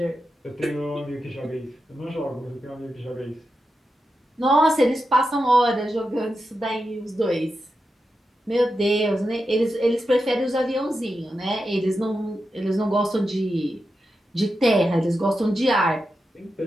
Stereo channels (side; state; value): both; normal; correlation 0.89